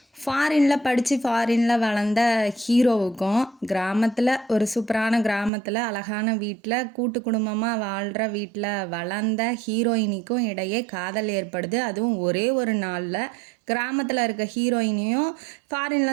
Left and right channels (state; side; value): drops out; left; at 5.5 s